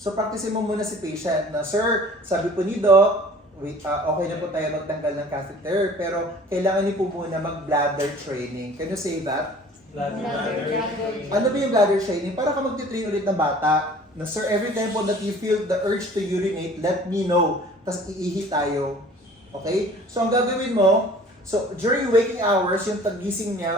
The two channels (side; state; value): both; normal; correlation 0.48